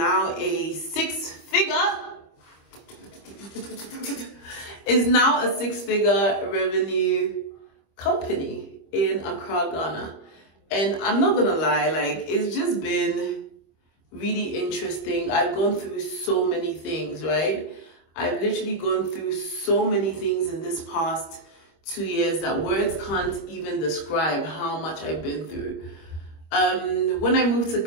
a six-figure revenue company in Accra, Ghana. And I'm not gonna lie, like, it's just been really interesting. I've gone through so many things, right? I've literally gone through so many things in this past 2 years that words can't even describe how much I've been through. When I moved to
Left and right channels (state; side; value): late; right; 25 ms